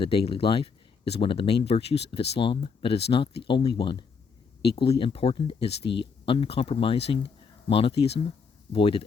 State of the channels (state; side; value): quieter; right; 5.5 dB